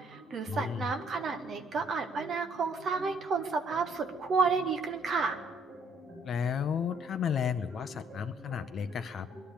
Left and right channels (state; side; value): normal; both; correlation 0.64